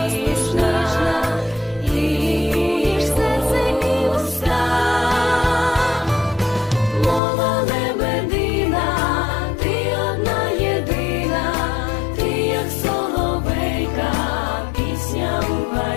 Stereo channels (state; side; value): drops out; right; at 7.2 s